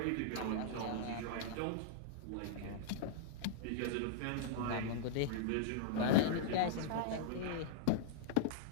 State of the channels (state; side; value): different; both; correlation -0.02